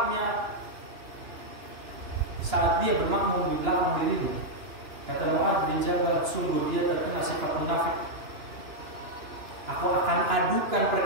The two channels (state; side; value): late; left; 2.9 ms